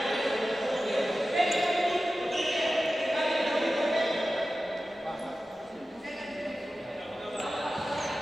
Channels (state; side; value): normal; both; correlation 0.94